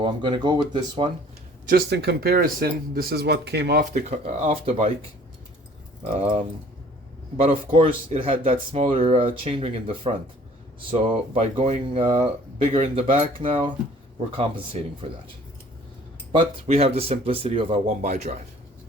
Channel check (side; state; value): both; normal; correlation 0.53